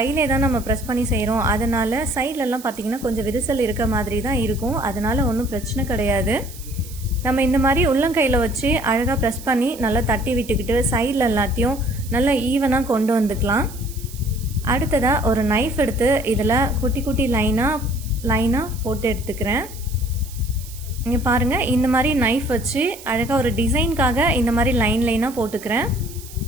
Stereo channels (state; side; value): noise; right; hiss, 17 dB below the sound